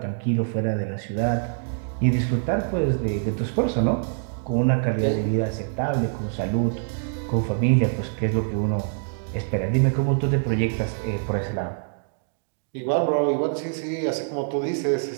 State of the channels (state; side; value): silent; left; digital silence